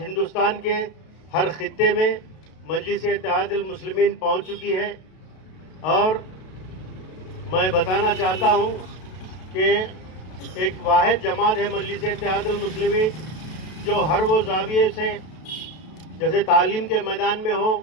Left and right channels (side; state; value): right; late; 32 ms